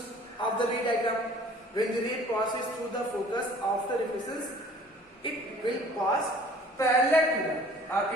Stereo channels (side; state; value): both; normal; correlation 0.51